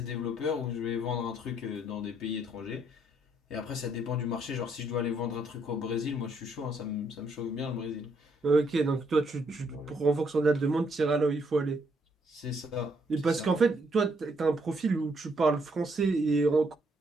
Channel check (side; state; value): both; normal; correlation 0.71